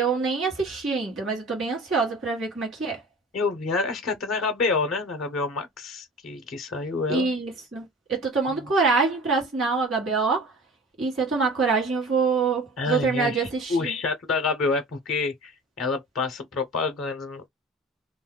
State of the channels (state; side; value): normal; both; correlation 0.39